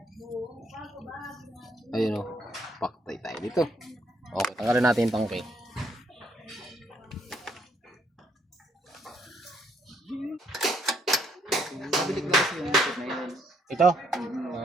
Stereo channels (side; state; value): both; normal; correlation 0.70